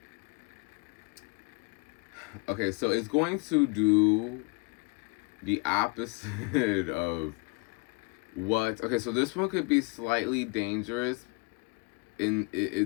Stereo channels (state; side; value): quieter; right; 29.3 dB